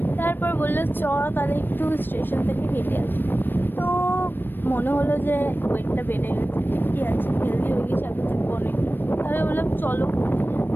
তারপর বললো চ তাহলে একটু স্টেশন থেকে হেঁটে আসি। তো মনে হলো যে ওয়েটটা বেড়ে গেছে, ঠিকই আছে, হেলদি হয়ে গেছে আমি থেকে অনেক। তাহলে বললাম চলো।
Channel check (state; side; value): late; right; 0.095 ms